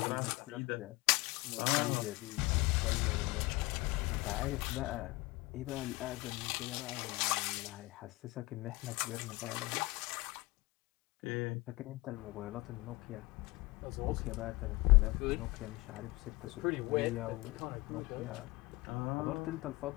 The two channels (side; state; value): right; quieter; 21.9 dB